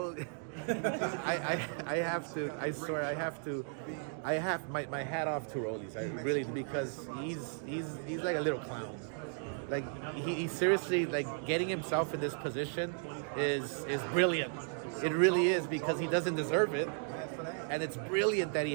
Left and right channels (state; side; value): silent; left; 54 dB below the other